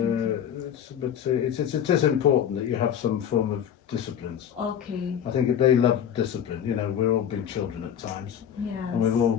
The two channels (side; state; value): right; quieter; 9.0 dB